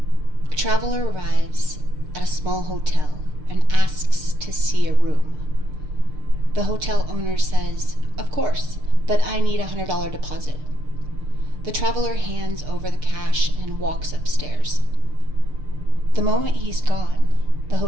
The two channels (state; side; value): late; left; 6.7 ms